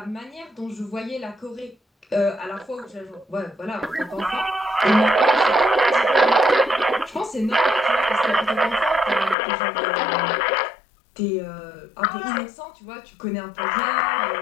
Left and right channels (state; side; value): drops out; right; at 9.3 s